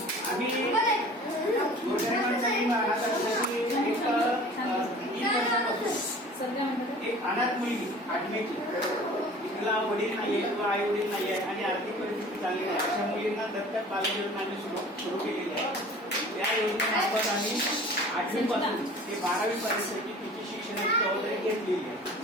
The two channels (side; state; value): both; normal; correlation 0.44